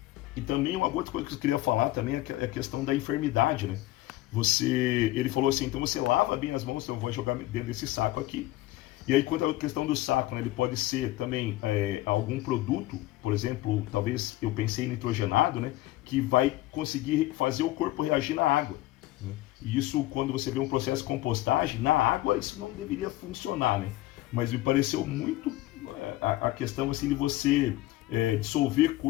e também uma outra coisa que eu queria falar também é a questão da enfermidade, né? Ele falou assim, então você lava bem as mãos, então eu vou jogar dentro desse saco aqui. E aí, quanto à questão do saco, né, ele pode ser também algum produto, por exemplo, talvez eu pensei em nitrogenado, né, que vai conseguir fazer o corpo reagir na água, né? E isso, quando você vê um processo de compostagem, na água isso não deveria funcionar, né? Mas me pareceu muito a questão assim, de você dissolver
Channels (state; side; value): quieter; right; 16.9 dB